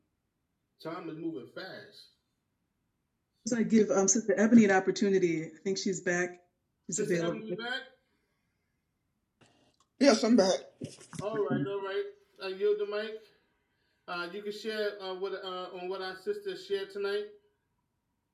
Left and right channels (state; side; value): identical; both; correlation 1.00